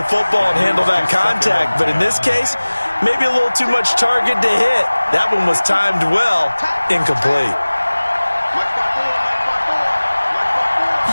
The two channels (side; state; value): both; inverted; correlation -1.00